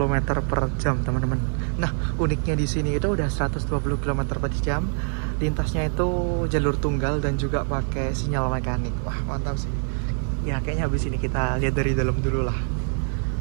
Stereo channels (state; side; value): silent; left; 58 dB below the other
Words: per jam teman-teman. Nah, uniknya di sini itu udah 120 km per jam, lintasnya itu jalur tunggal dan juga pakai sinyal mekanik. Wah, mantap sih. Ya, kayaknya habis ini kita lihat dari dalam dulu lah.